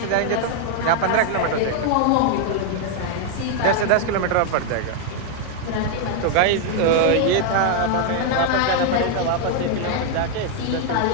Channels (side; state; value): both; different; correlation 0.00